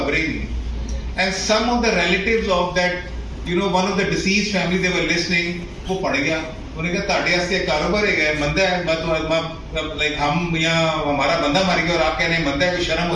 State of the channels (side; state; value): both; identical; correlation 1.00